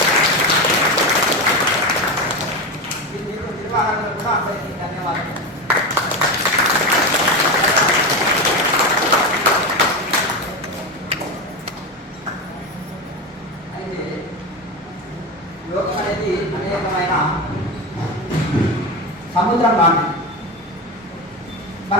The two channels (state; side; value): normal; both; correlation 0.18